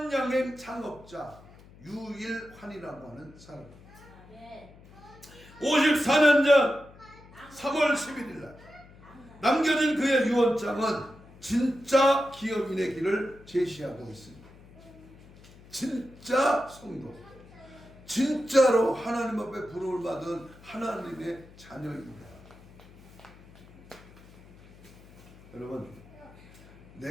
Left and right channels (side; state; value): left; noise; hum, 22 dB below the sound